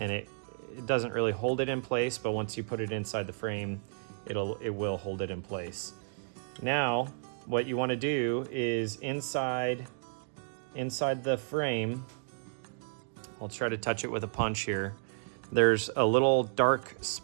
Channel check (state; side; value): silent; left; digital silence